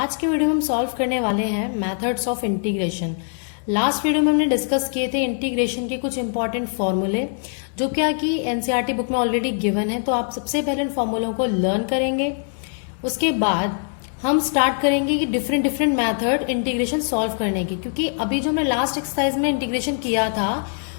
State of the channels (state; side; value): silent; right; 64 dB below the other